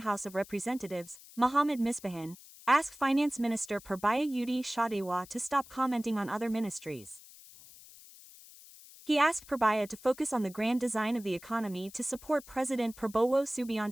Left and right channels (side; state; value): left; noise; hiss, 20 dB below the sound